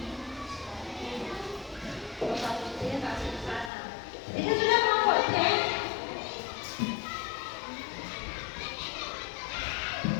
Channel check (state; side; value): drops out; right; at 3.7 s